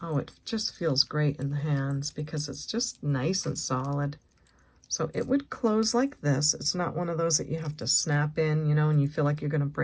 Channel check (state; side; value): identical; both; correlation 1.00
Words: Oh, it just feels great in the hands because it's just nice and solid. So it would close like this. It's not one of those that you have to snap in, you know, and you feel like you're going to